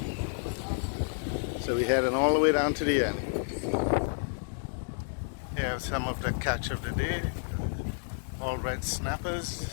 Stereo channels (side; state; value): right; silent; digital silence